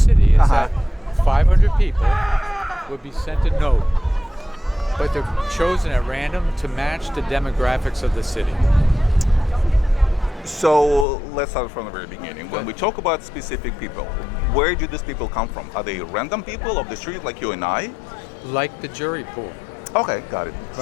is that 500 people would be sent a note, but they're chosen at random to match the demographics of the city. So let's start from the very beginning. When we talk about specific people, where do these people come from? Are they random people of the street like you and I? Like the jury pool. Okay, got it. Right?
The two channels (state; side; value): drops out; right; at 11.1 s